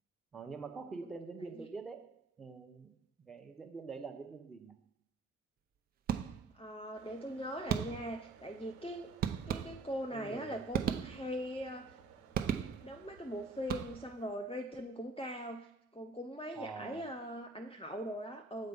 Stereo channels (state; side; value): quieter; left; 3.7 dB